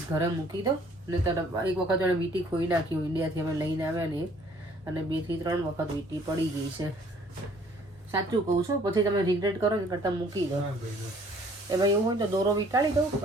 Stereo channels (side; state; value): both; normal; correlation 0.58